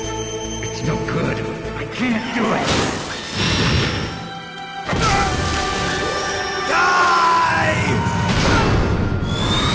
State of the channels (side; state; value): both; identical; correlation 1.00